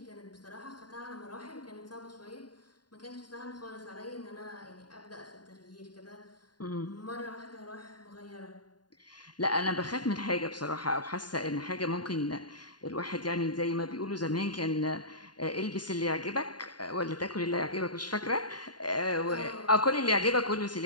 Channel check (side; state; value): right; late; 0.70 ms